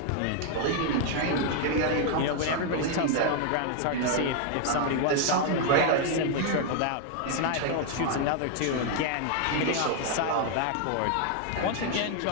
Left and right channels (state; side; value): different; both; correlation 0.01